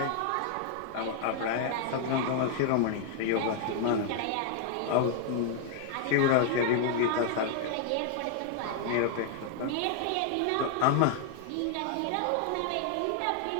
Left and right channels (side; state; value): both; different; correlation 0.00